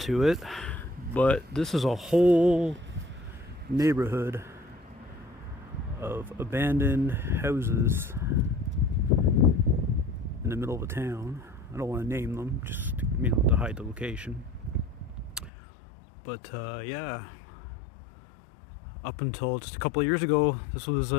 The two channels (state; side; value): drops out; right; at 15.5 s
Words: it. But this is a whole neighborhood of abandoned houses in the middle of a town. I don't want to name them, just, you know, to hide the location. But yeah, up until just a couple of years ago, this was